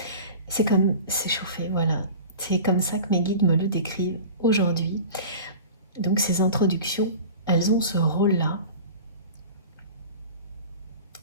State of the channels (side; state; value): both; inverted; correlation -0.37